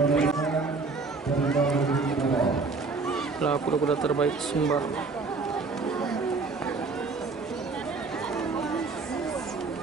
Lah kuda-kuda terbaik Sumbar.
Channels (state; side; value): quieter; left; 4.2 dB